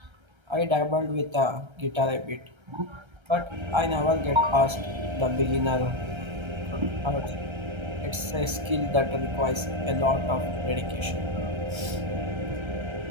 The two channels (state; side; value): late; left; 1.3 ms